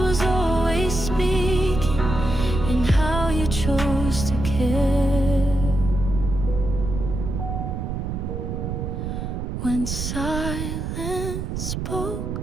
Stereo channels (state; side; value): noise; right; rumble, 4 dB below the sound